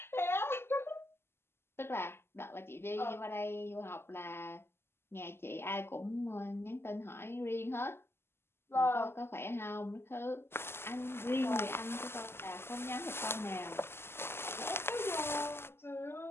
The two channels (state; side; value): late; right; 0.12 ms